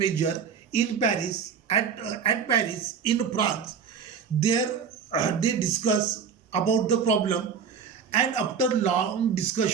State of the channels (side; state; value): left; quieter; 6.7 dB